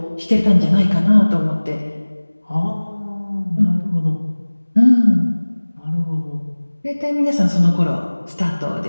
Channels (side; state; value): both; inverted; correlation -1.00